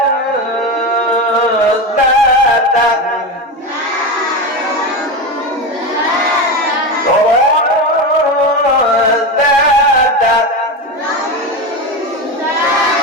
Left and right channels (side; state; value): both; normal; correlation 0.19